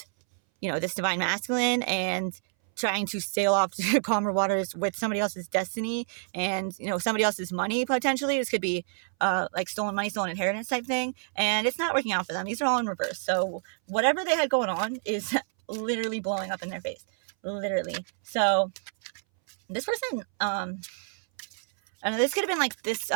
you know, this divine masculine and trying to sail off to calmer waters with somebody else's destiny and, you know, somebody else's money, potentially. This could be, like, stolen money, stolen inheritance type thing. And it's not working out for them. These are all in reverse. So, whatever they had going on is literally blowing up in their face. Literally. So, this person, I don't know, this could have been like this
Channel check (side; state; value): left; silent; 59 dB below the other